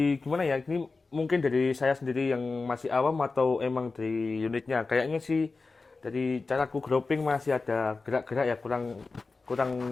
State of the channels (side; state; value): right; quieter; 3.9 dB